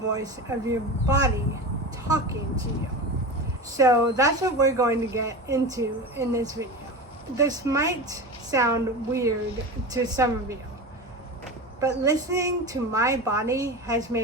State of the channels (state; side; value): normal; both; correlation 0.27